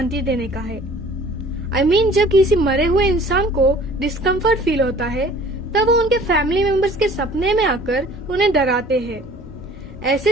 देने का है। I mean, जब किसी मरे हुए इंसान को डिस्कम्फर्ट फील होता है तब वो उनके फैमिली मेंबर्स के सपने में आकर उन्हें डराते हैं। ऐसे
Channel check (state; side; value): normal; both; correlation 0.50